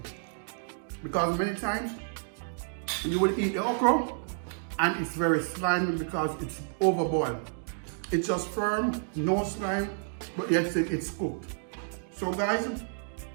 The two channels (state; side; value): silent; left; digital silence